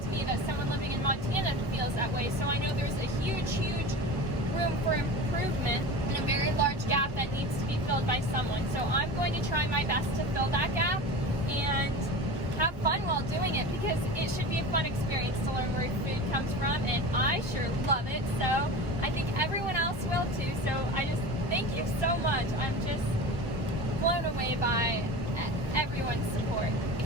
to me that someone living in Montana feels that way. So I know there's a huge, huge room for improvement and a very large gap that needs to be filled by someone. So I'm going to try my best to fill that gap and have fun while doing it because it should be a fun experience to learn where food comes from, and I sure love it. So I think everyone else will too. So I just thank you so much. I'm just blown away by everyone's support.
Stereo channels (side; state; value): both; normal; correlation 0.32